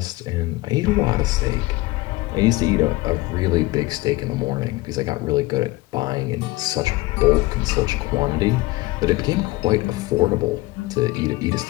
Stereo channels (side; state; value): right; quieter; 20.4 dB